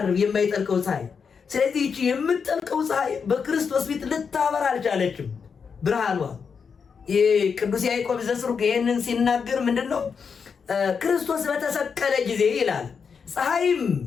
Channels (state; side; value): quieter; right; 6.1 dB